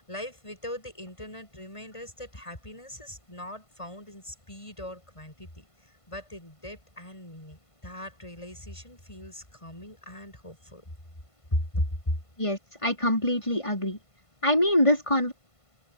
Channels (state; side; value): late; right; 1.5 ms